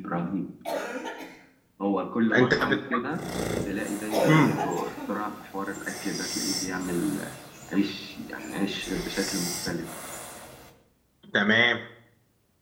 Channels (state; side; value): identical; both; correlation 1.00